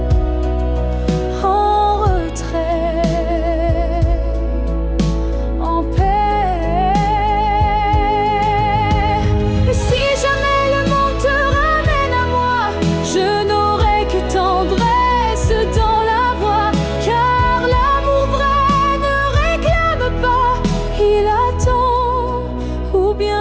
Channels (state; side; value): identical; both; correlation 1.00